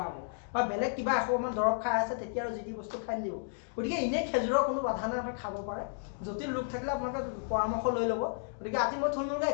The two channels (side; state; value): right; silent; digital silence